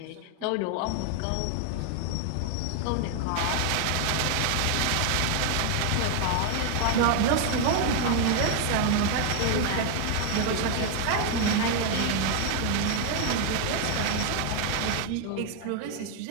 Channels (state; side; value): different; both; correlation 0.00